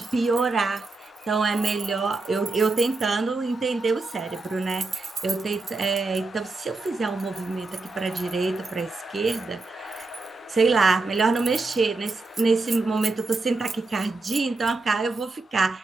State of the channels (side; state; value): left; quieter; 3.5 dB